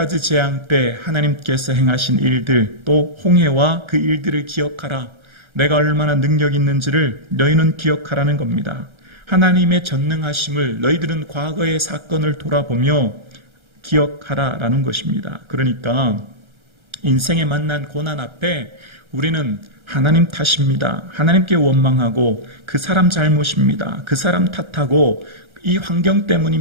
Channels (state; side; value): late; left; 1.3 ms